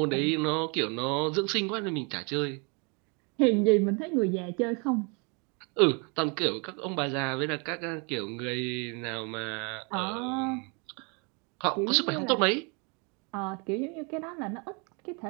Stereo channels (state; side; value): quieter; left; 33.1 dB